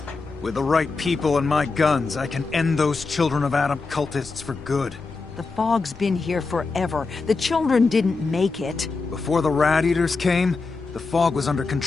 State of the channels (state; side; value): quieter; right; 4.1 dB